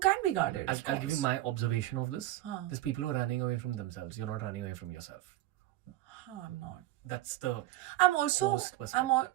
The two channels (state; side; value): quieter; left; 15.4 dB